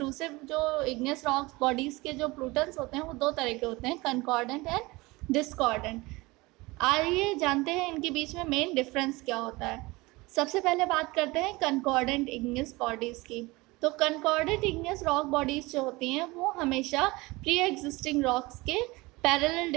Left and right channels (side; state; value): left; quieter; 22.4 dB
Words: जो इग्नियस रॉक्स बॉडीज़ के जो प्लूटन्स होते हैं वो दो तरह के होते हैं, कंकॉर्डेंट एंड डिस्कॉर्डेंट। आइए जानते हैं इनके बीच में मेन डिफरेंस क्या होता है। सबसे पहले बात करते हैं कंकॉर्डेंट इग्नियस बॉडीज़ की। तो कंकॉर्डेंट इग्नियस रॉक बॉडीज़ जो होती हैं वो हमेशा प्री एग्जिस्टिंग रॉक्स के पैरेलल